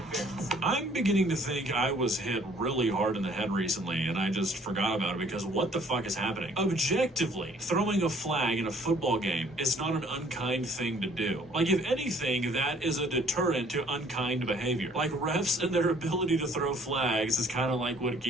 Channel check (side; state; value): both; normal; correlation 0.58